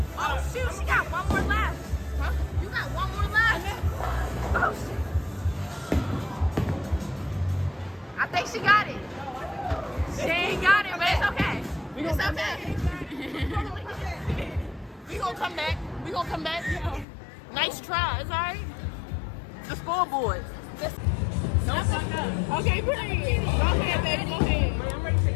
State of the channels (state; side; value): drops out; right; at 17.1 s